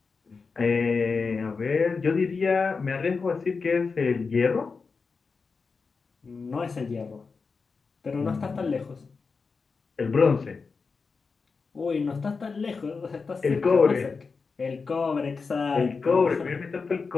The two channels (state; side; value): quieter; right; 4.7 dB